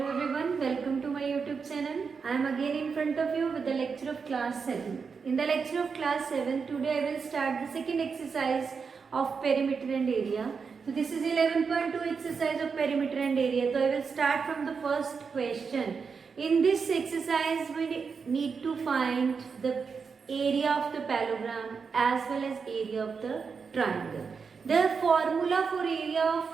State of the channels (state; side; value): quieter; left; 5.5 dB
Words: everyone, welcome to my YouTube channel. I am again in front of you with the lecture of class 7. In the lecture of class 7, today I will start the second exercise of perimeter and area. So this is 11.2 exercise of perimeter and area. So I will start from the first question. In this exercise, we need to find the area of the parallelogram as well as area of the triangle. The formula for area of